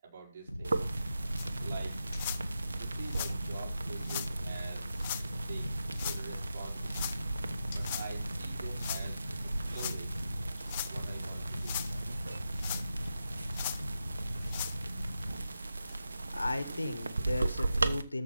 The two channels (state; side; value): inverted; both; correlation -0.88